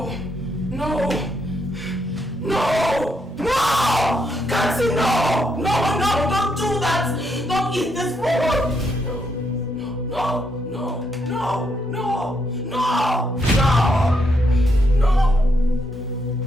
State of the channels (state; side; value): normal; both; correlation 0.77